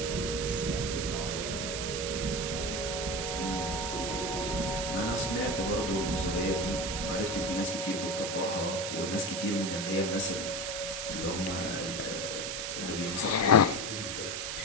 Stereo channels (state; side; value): noise; right; hiss, 3 dB below the sound